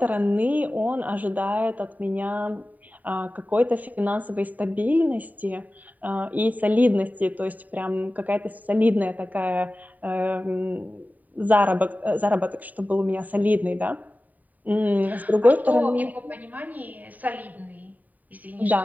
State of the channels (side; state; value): left; late; 0.079 ms